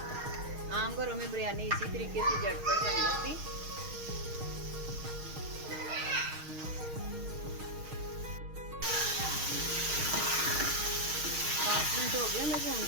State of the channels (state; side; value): late; left; 6.4 ms